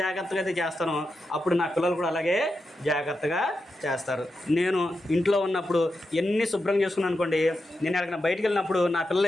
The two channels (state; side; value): normal; both; correlation 0.88